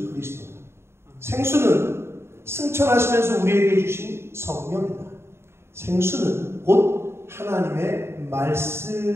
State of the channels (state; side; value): late; left; 0.12 ms